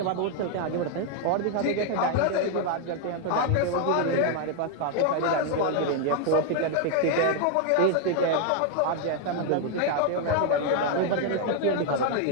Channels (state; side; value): different; both; correlation 0.00